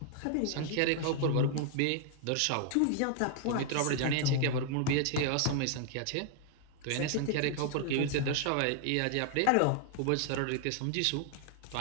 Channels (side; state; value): both; different; correlation 0.00